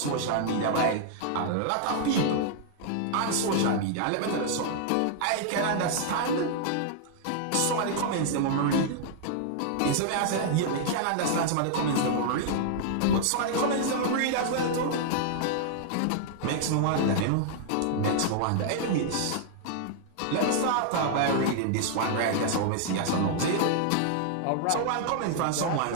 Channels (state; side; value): different; both; correlation -0.01